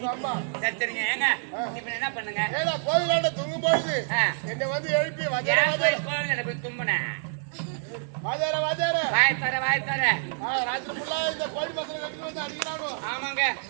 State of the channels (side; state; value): left; silent; 57 dB below the other